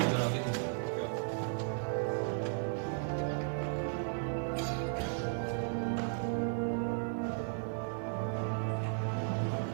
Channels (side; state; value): left; silent; digital silence